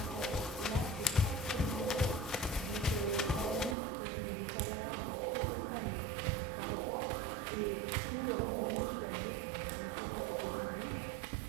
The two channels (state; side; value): drops out; left; at 3.8 s